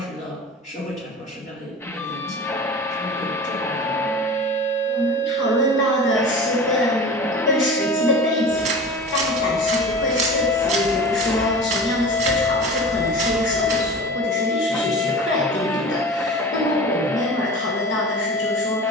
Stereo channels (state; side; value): normal; both; correlation 0.35